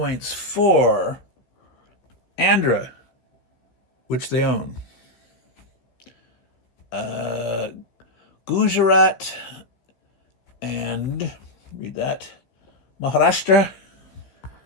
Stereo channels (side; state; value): right; late; 15 ms